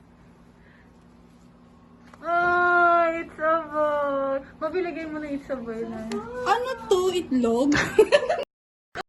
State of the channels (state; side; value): identical; both; correlation 1.00